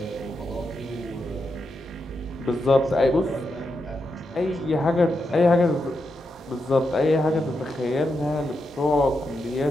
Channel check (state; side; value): normal; both; correlation 0.85